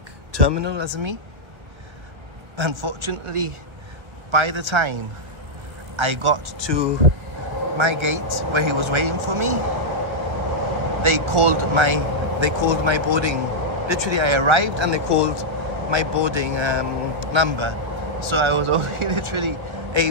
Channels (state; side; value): late; left; 1.4 ms